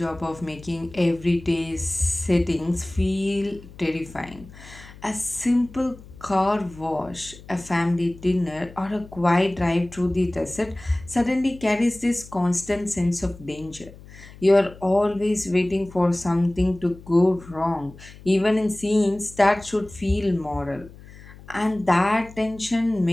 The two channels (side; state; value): left; noise; hum, 19 dB below the sound